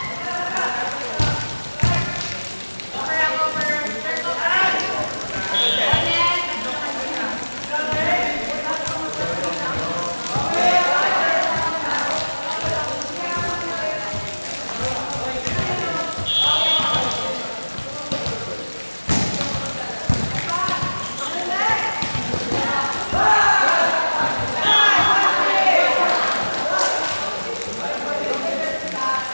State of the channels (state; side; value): inverted; both; correlation -1.00